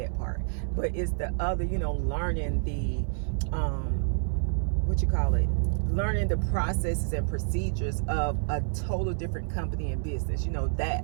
part. But it's the other, you know, learning the learning the processes and procedures of a total different company and business. You know, that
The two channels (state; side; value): silent; left; 59 dB below the other